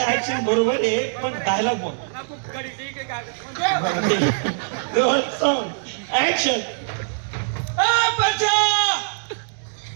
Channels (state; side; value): silent; left; digital silence